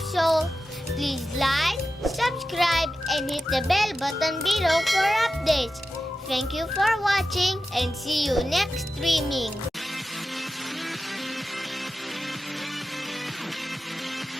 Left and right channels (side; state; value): both; normal; correlation 0.92